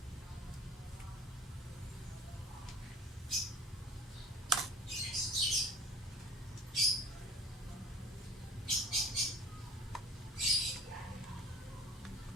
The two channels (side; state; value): both; normal; correlation 0.47